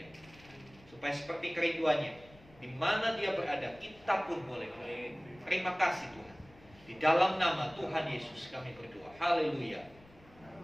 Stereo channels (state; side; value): noise; left; rumble, 24 dB below the sound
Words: Supaya seperti kerinduannya, di mana Dia berada, kita pun boleh berada. Terima kasih Tuhan. Di dalam nama Tuhan Yesus kami berdoa. Haleluya.